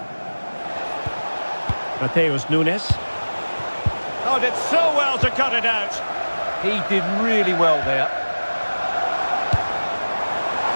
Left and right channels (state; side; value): inverted; both; correlation -1.00